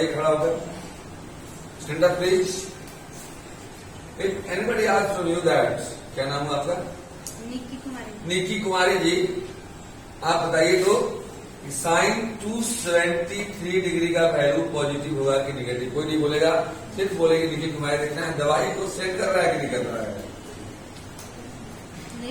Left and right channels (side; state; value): both; identical; correlation 1.00